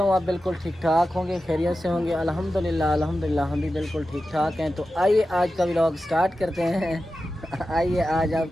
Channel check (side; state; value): both; normal; correlation 0.92